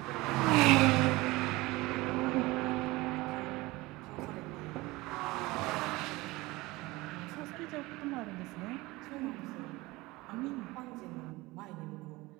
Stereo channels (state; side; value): quieter; left; 21.1 dB